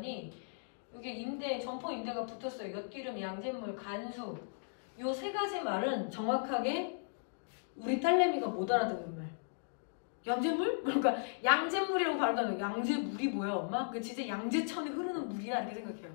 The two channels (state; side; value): silent; right; digital silence